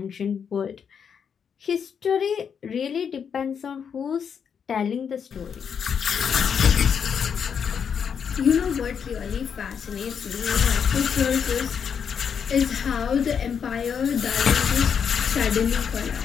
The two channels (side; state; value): right; quieter; 7.2 dB